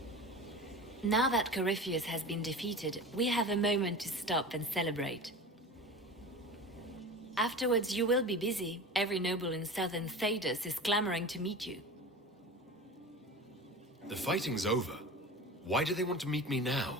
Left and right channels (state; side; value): normal; both; correlation 0.33